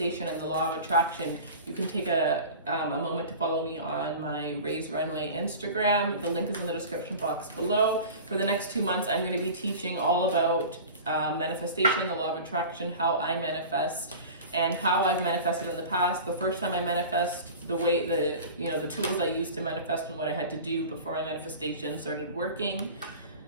and the law of attraction, you can take a moment to follow me on my Raise Runway Instagram. The link is in the description box below. For the next 2 months, I'm going to be teaching all about manifestation, the law of attraction, how I manifest, and how I've manifested in the past. The first time I manifest, the tools I used to manifest and what I had to do before my manifestation started working.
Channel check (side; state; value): both; inverted; correlation -0.37